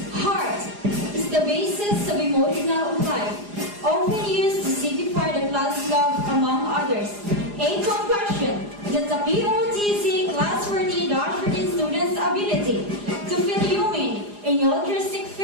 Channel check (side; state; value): left; late; 4.9 ms